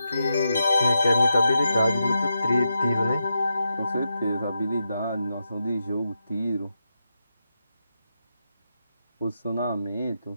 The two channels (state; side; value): inverted; both; correlation -0.87